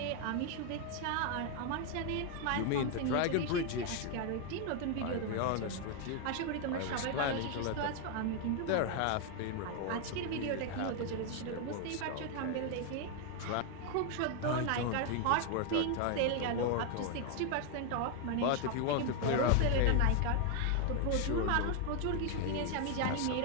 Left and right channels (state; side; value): different; both; correlation 0.01